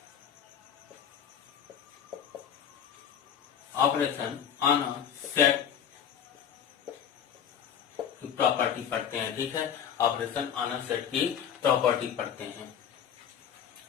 ऑन अ सेट की प्रॉपर्टी पढ़ते हैं। ठीक है, ऑपरेशन ऑन अ सेट की प्रॉपर्टी पढ़ते हैं।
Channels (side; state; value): right; quieter; 8.6 dB